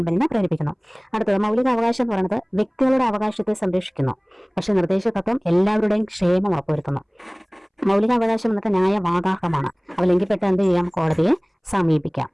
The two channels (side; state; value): both; identical; correlation 1.00